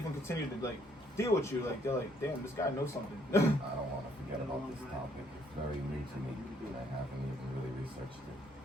continue to like deal with you. Like they're like, damn, this guy knows something. I don't want to forget about this topic. It's very new to me. I haven't even really researched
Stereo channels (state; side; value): normal; both; correlation 0.68